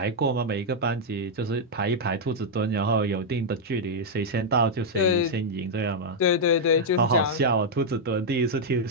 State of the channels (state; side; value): normal; both; correlation -0.04